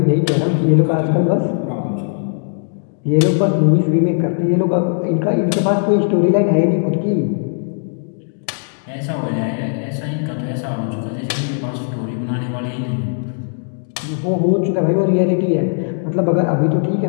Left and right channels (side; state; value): right; silent; digital silence